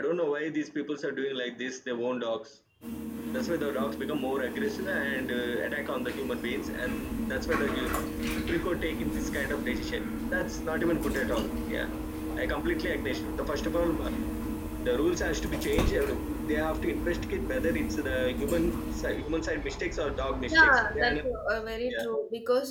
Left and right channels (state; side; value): identical; both; correlation 1.00